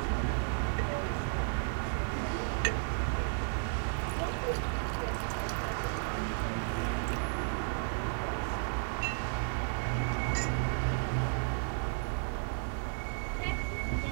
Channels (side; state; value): left; silent; 55 dB below the other